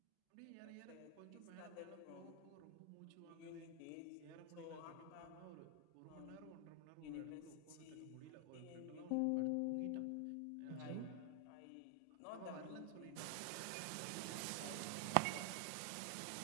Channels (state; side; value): different; both; correlation 0.00